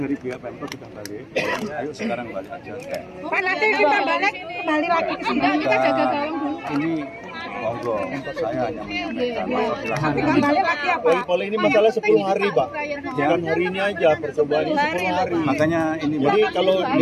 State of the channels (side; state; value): both; identical; correlation 1.00